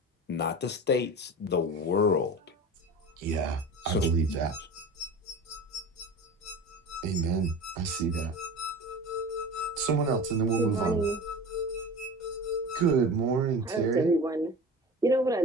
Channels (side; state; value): both; normal; correlation 0.33